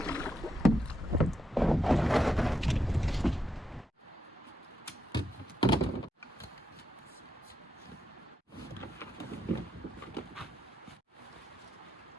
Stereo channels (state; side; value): normal; both; correlation 0.83